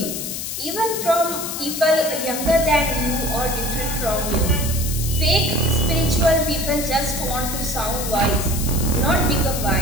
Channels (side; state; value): left; noise; hiss, 5 dB below the sound